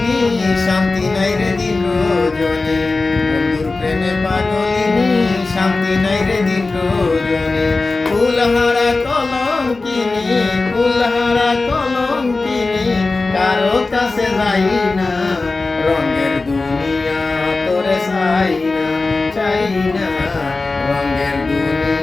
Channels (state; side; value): quieter; right; 3.6 dB